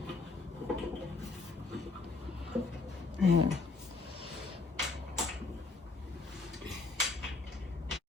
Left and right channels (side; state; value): right; quieter; 3.8 dB